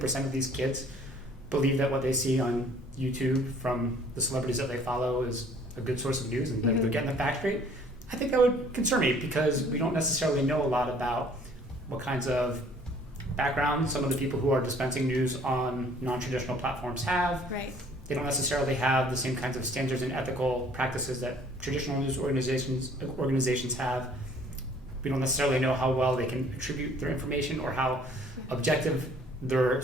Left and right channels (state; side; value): normal; both; correlation 0.56